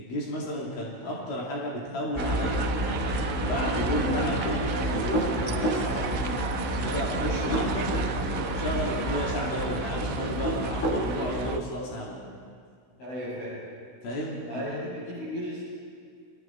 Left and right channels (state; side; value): late; right; 16 ms